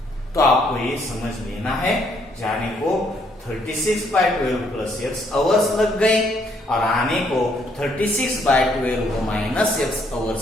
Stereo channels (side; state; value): both; normal; correlation 0.69